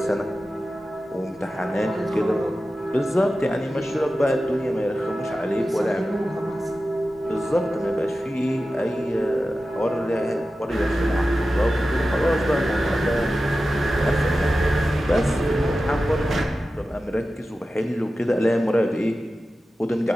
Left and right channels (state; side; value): normal; both; correlation 0.94